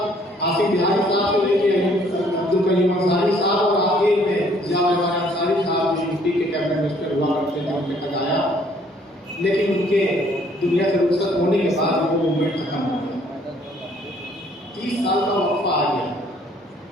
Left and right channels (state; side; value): normal; both; correlation 0.62